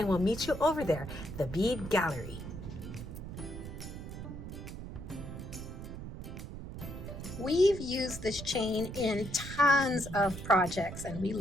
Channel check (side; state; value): right; noise; rumble, 9 dB below the sound